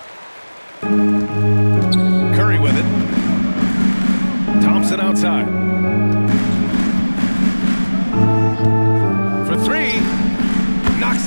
Curry with it. Thompson outside. For 3. Knocks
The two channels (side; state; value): both; inverted; correlation -1.00